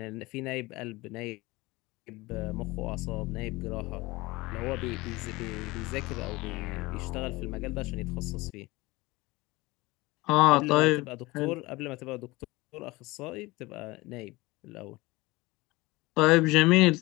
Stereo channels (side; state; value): right; quieter; 21.8 dB